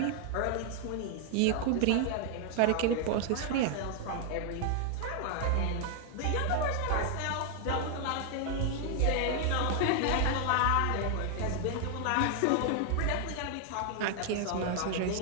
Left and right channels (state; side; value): different; both; correlation 0.00